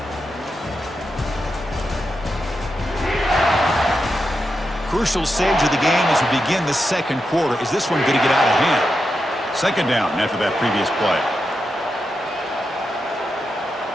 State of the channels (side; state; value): both; normal; correlation 0.87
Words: Crucial stage of the game as we begin the 2nd quarter. Is this one going to get out of hand? 2nd down after that previous play.